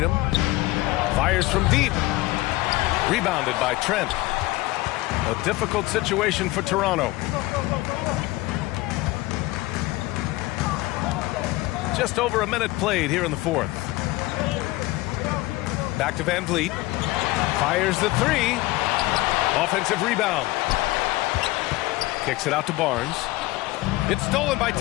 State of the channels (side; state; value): right; quieter; 19.6 dB